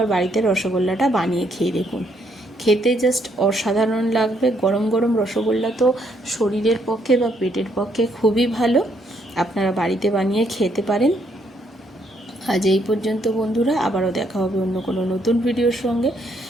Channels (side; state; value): both; normal; correlation 0.72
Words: বাড়িতে রসগোল্লাটা বানিয়ে খেয়ে দেখুন, খেতে জাস্ট অসাধারণ লাগবে। গরম গরম রসগোল্লা তো শরীরের পক্ষে বা পেটের পক্ষে খুবই ভালো, আপনারা বাড়িতে বানিয়ে খেতে পারেন। আজ এই পর্যন্ত বন্ধুরা, আবারও দেখা হবে অন্য কোনো নতুন ভিডিওর সঙ্গে।